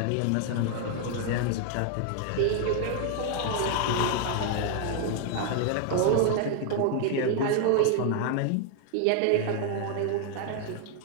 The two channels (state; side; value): different; both; correlation 0.00